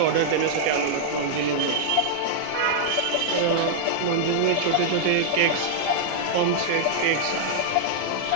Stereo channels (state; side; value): different; both; correlation -0.01